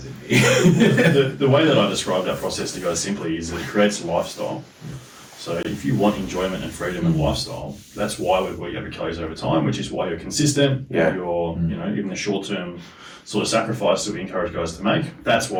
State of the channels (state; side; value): identical; both; correlation 1.00